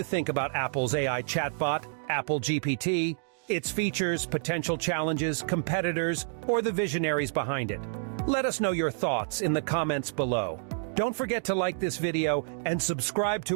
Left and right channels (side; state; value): left; silent; digital silence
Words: think about Apple's AI chatbot, Apple GPT, its features, potential challenges, competitors, or the visionaries behind it? Let us know your thoughts in the comments below. Don't forget to like this video and subscribe